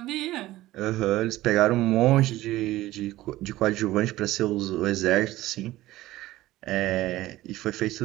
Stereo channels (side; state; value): left; quieter; 16.5 dB